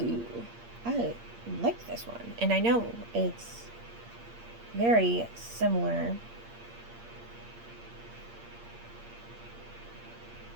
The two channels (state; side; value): late; left; 8.6 ms